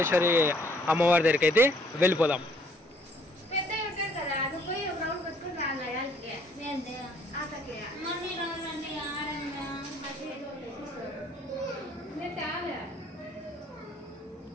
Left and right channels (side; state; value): both; normal; correlation 0.62